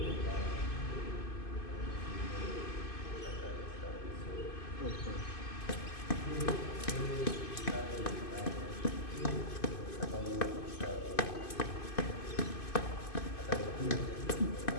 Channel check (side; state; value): right; late; 2.5 ms